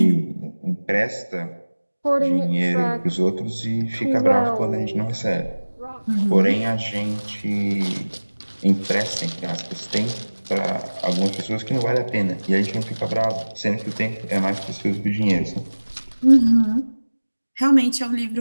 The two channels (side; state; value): both; inverted; correlation -1.00